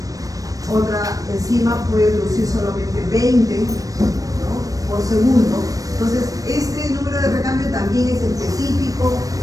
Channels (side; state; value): left; late; 0.17 ms